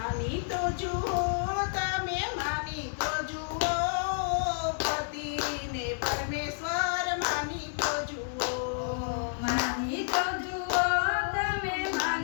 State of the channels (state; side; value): silent; right; digital silence